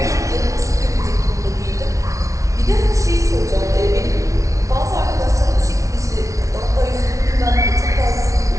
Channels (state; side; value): late; left; 0.15 ms